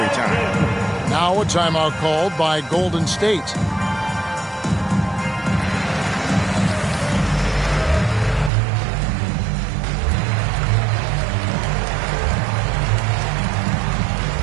time. Now a timeout called by Golden State.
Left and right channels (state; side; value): drops out; left; at 8.5 s